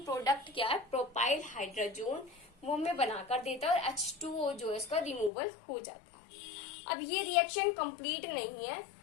क्या है, प्रोपाइल हाइड्रोजोन, वो हमें बनाकर देता है और H2O जो है इसका रिमूवल हो जाता है। अब ये रिएक्शन कंप्लीट नहीं है,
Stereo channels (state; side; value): drops out; right; at 5.3 s